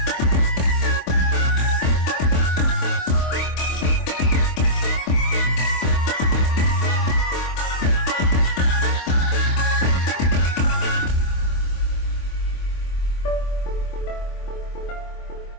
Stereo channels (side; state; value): right; late; 26 ms